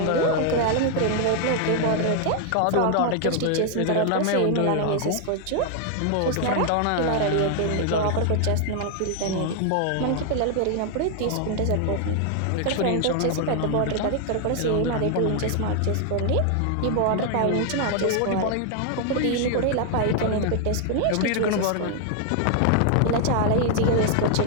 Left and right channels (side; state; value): both; different; correlation 0.00